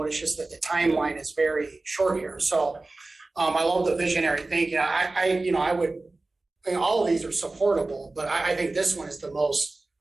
It's just that the timeline is very short here. So I love the visionary thinking. I would, all of these are supportable, but I think this one is the most,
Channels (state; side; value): quieter; left; 3.2 dB